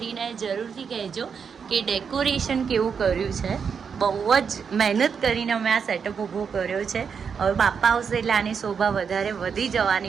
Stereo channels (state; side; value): quieter; left; 6.4 dB